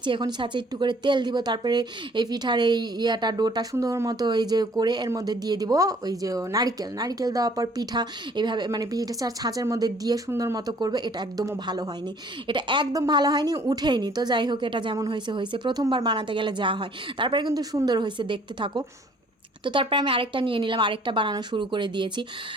এখন ছাঁচে একটু করে তেল দিব। তারপরে এই পিঠার এই ডোটা সুন্দর মতো এই যে করে এর মধ্যে দিয়ে দিব ওই যে নারকেল দেওয়ার পর পিঠা এইভাবে মানে পিঠা ছাঁচের মধ্যে দিয়ে সুন্দর মতো করবে। এটা একদমও ভালো হয়নি, এটা একদম ভালো হয়নি, উঠেইনি। তো যাই হোক, এটা যেমন হয়েছে প্রথমবার বানাতে গেলে যা হয়। তারপরে কিন্তু সুন্দর হয়েছে, দেখতে থাকো। তো তারপরে আমি আরেকটা নিয়ে নিলাম, আরেকটা বানানো শুরু করে দিয়েছি।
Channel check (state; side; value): normal; both; correlation 0.57